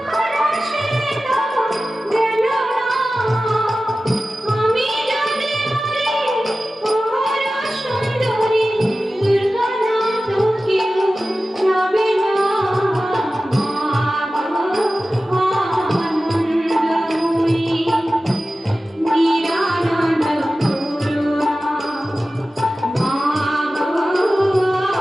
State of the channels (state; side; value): normal; both; correlation 0.95